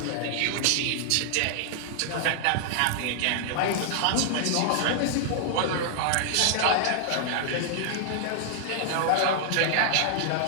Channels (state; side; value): different; both; correlation -0.01